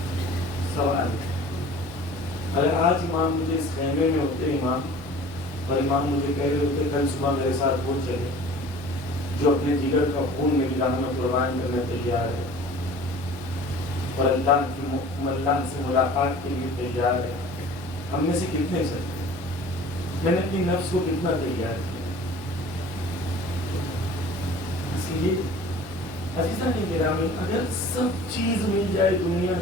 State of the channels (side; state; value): both; normal; correlation 0.45